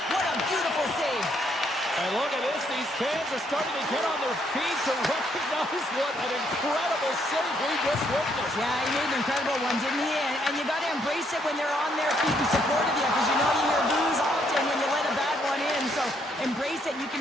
What a beautiful save. And look at this. These fans are starting to get on their feet to recognize what an incredible save we just witnessed. Yeah, he made an incredible one, didn't he? And you got to embrace it when they're on their feet and support of you, because you know you hear boos often when you let a bad one in. So embrace it. You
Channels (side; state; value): both; normal; correlation 0.72